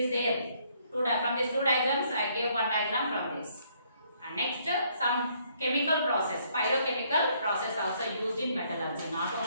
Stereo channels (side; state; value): both; inverted; correlation -0.67